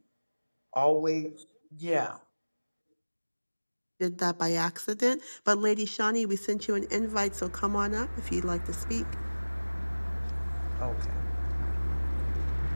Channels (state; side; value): inverted; both; correlation -1.00